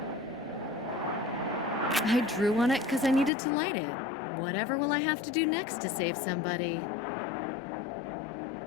I drew on it because I needed to light it. Whatever will I have to do next to save somebody?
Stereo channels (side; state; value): right; drops out; at 3.3 s